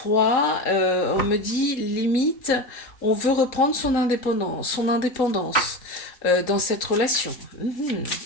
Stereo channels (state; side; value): late; right; 3.7 ms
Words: On me dit, limite, on veut reprendre son indépendance dans cette relation.